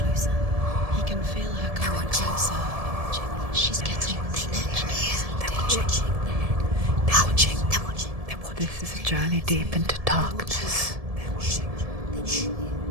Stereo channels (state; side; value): late; left; 1.7 ms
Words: He can feel her coming closer. She's getting closer. They're watching. They're watching. They're watching. This is a journey deep into darkness. They're watching.